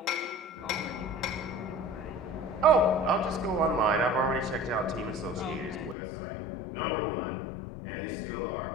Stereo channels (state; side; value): drops out; right; at 6.0 s